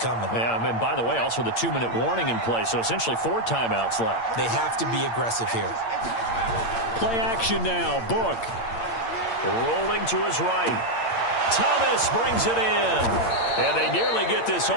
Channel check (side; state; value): right; late; 8.7 ms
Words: coming. Yeah, and by the way, also the 2-minute warning in play, so essentially 4 timeouts left. They have to be aggressive here. Play action now. Book. Rolling to his right. Thomas brings it in. And they nearly get this